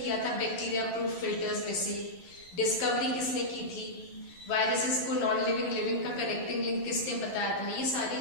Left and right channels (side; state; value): right; late; 11 ms